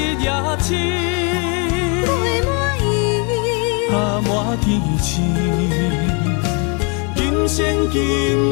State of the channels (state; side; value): quieter; right; 34.9 dB